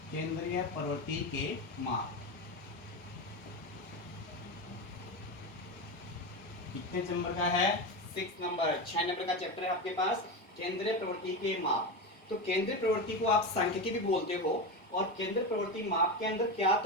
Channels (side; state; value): both; normal; correlation 0.18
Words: केंद्रीय प्रवृत्ति के माप कितने नंबर का है? 6 नंबर। 6 नंबर का चैप्टर है आपके पास केंद्रीय प्रवृत्ति के माप। तो केंद्रीय प्रवृत्ति को आप सांख्यिकी भी बोलते हो। और केंद्रीय प्रवृत्ति माप के अंदर क्या